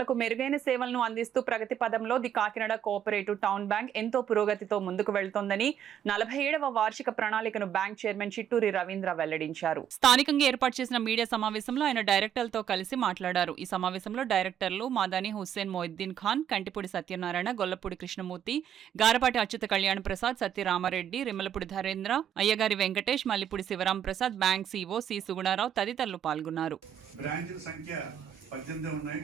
మెరుగైన సేవలను అందిస్తూ ప్రగతి పదంలో the Kakinada cooperative town bank ఎంతో పురోగతితో ముందుకు వెళ్తోందని 47వ వార్షిక ప్రణాళికను బ్యాంక్ చైర్మన్ చిట్టూరి రవీంద్ర వెల్లడించారు. స్థానికంగా ఏర్పాటు చేసిన మీడియా సమావేశంలో ఆయన డైరెక్టర్లతో కలిసి మాట్లాడారు. ఈ సమావేశంలో డైరెక్టర్లు మాదాని Hussain Moiddin Khan, Kantipudi Satyanarayana, Gollapudi Krishnamurthy, Garapati Achyuta Kalyan Prasad, సత్యరామారెడ్డి, Rimmalapudi Dharendra, Ayyagari Venkatesh, Mallipudi Shivaram Prasad, bank CO C Sugunarao తదితరులు పాల్గొన్నారు. 18 ఉన్నాయి.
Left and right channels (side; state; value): left; quieter; 9.6 dB